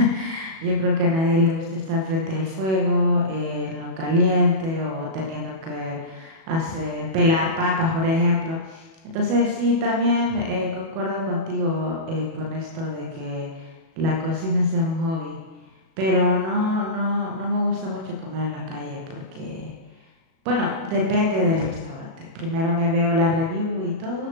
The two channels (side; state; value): left; late; 37 ms